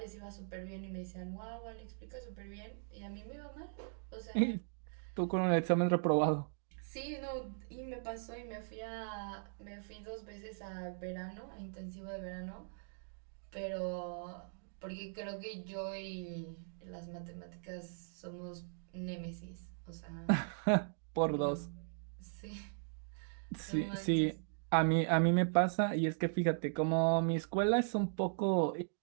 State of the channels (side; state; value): left; silent; digital silence